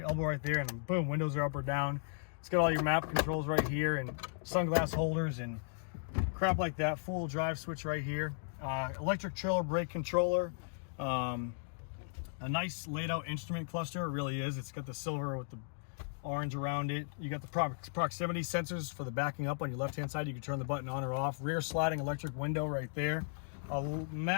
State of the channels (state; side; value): silent; right; digital silence